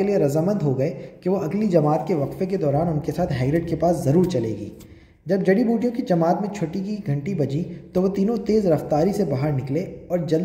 लिए रजामंद हो गए कि वो अगली जमात के वक्फे के दौरान उनके साथ हैग्रिड के पास ज़रूर चलेगी। जब जड़ी बूटियों की जमात में छुट्टी की घंटी बजी तो वो तीनों तेज़ रफ्तारी से बाहर निकले और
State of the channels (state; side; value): identical; both; correlation 1.00